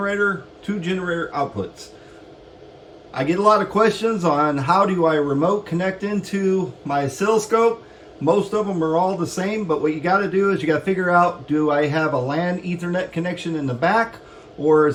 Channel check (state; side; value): identical; both; correlation 1.00